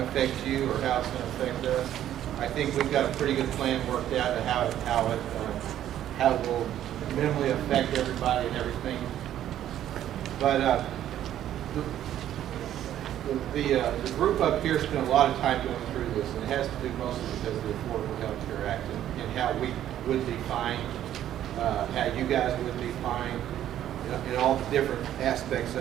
affect you or how it's going to affect us. I think we've got a pretty good plan worked out of how it will minimally affect everybody and everything. But the group up here spent a lot of time going through this, and it has to do mostly because of the Affordable Health Care Act and how we would be fined, how you guys would be fined, in all the different aspects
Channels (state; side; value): quieter; left; 11.6 dB